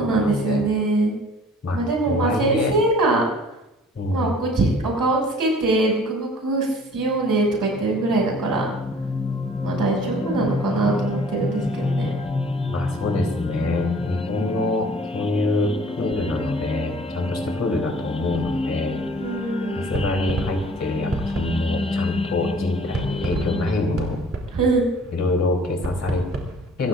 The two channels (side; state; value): both; normal; correlation 0.52